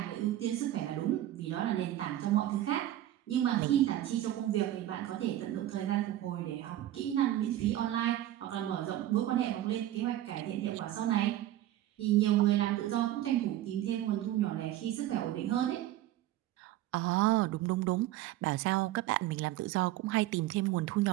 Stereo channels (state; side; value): quieter; left; 13.7 dB